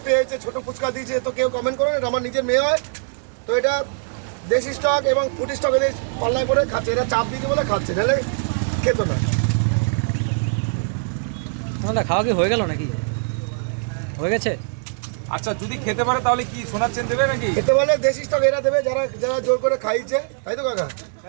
পেয়েছে, ছোট ফুচকা দিয়েছে, তো কেউ কমেন্ট করবে, এটা আমার নিজের মেয়ে হয়। তো এটা দেশি স্টক এবং ফুটি স্টক এদের পাল্লায় করে খাচ্ছে, এটা চাপ দিতে বলে খাচ্ছে, নাহলে খেতো না। সোনাদা খাওয়া কি হয়ে গেল নাকি? হয়ে গেছে? আচ্ছা, যদি খেতে পারে তাহলে কি সোনার চেন দেবে নাকি? খেতে বলে দেশি স্টক এরা দেবে, যারা যারা জোর করে খাইছে, তাই তো কাকা?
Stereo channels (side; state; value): left; silent; digital silence